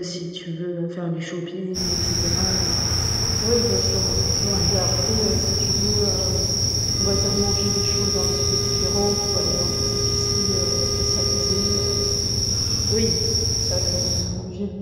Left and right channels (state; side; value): identical; both; correlation 1.00